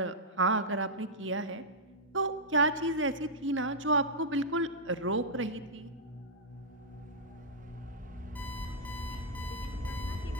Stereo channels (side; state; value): both; normal; correlation -0.09